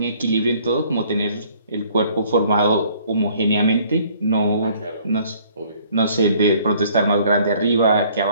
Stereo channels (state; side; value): inverted; both; correlation -0.59